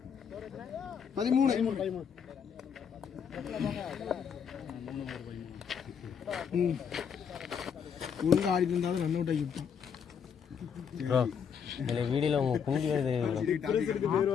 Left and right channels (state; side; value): quieter; right; 7.2 dB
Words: ஒழுங்காக ஆடிட்டு இருந்தாலும் ரன் அவுட் ஆகி விட்டோம். ப்ரோ இதில் வீடியோவில் உங்கள் குஞ்சு வருது